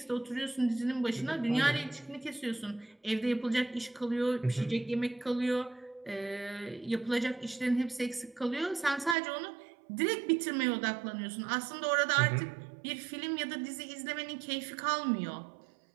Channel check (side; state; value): left; drops out; at 9.2 s